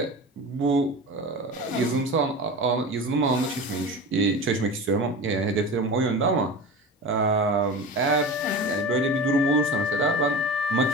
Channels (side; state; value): both; normal; correlation 0.31